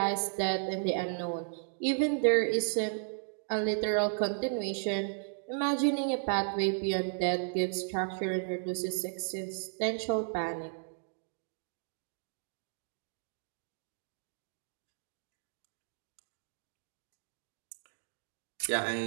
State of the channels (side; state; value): left; silent; digital silence